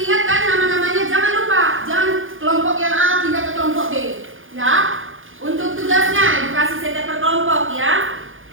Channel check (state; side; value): late; left; 0.58 ms